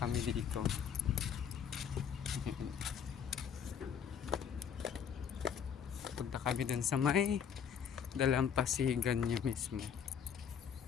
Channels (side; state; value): right; quieter; 7.7 dB